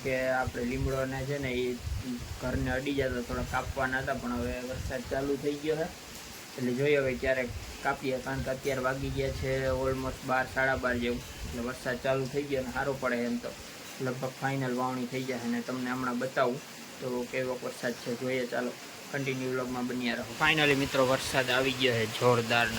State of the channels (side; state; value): both; identical; correlation 1.00